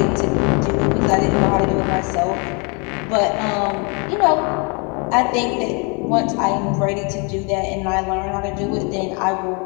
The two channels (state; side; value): quieter; right; 33.2 dB